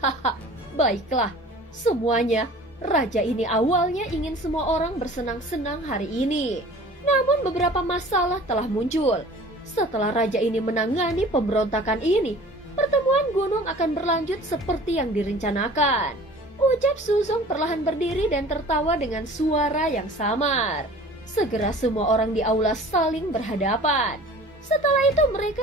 baiklah, semuanya. Raja ini awalnya ingin semua orang bersenang-senang hari ini. Namun beberapa masalah telah muncul. Setelah raja ini menangani pemberontakan ini, pertemuan gunung akan berlanjut seperti yang direncanakan. Ucap Suzong perlahan berdiri dan tertawa dengan suara yang samar. Segera semua orang di aula saling berhadapan. Setelah itu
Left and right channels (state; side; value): normal; both; correlation 0.45